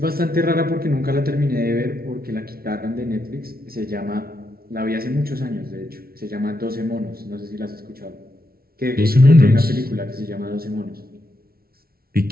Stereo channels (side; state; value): left; late; 0.44 ms